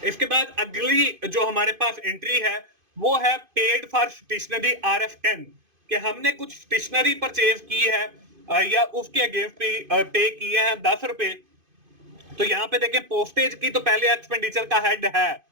इसके बाद अगली जो हमारे पास एंट्री है वो है पेड फॉर स्टेशनरी RF 10, कि हमने कुछ स्टेशनरी परचेज की है या उसके अगेंस्ट पे किए हैं 10 रुपए। तो यहाँ पे देखें पोस्टेज की तो पहले एक्सपेंडिचर का हेड है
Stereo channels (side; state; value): left; late; 2.5 ms